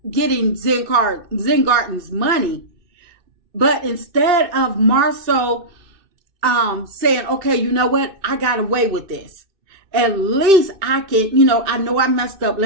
getting Zen Gardens money. But instead of MARSAU saying, okay, you know what? I got away with this. At least I can, I know I messed up.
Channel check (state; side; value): late; left; 2.6 ms